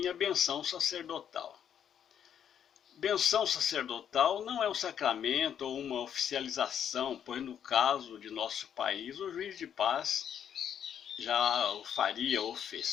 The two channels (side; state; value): right; quieter; 8.9 dB